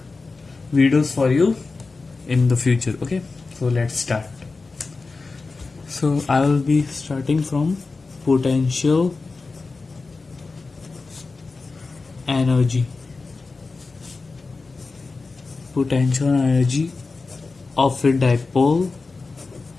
videos for you in the future. Okay, so let's start. So I will be starting from potential energy. Potential energy of a dipole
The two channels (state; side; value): quieter; right; 4.0 dB